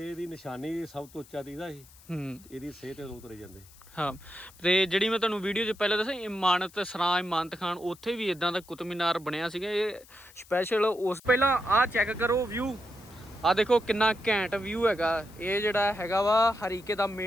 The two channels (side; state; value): left; noise; hiss, 24 dB below the sound